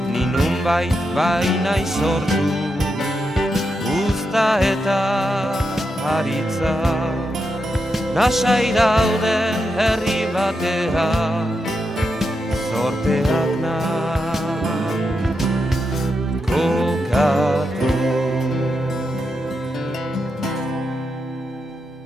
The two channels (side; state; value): both; normal; correlation 0.85